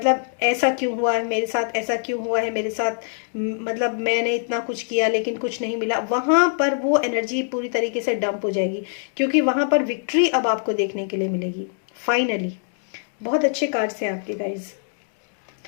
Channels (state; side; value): silent; right; 63 dB below the other